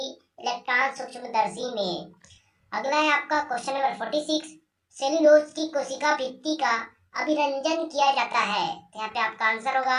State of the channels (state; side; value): identical; both; correlation 1.00